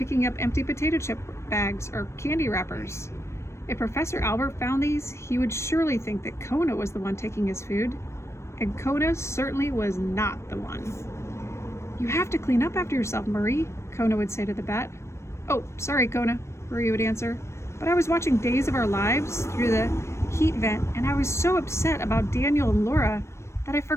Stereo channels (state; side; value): late; right; 0.13 ms